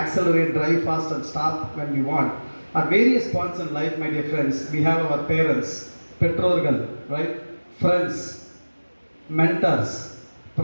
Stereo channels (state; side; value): inverted; both; correlation -1.00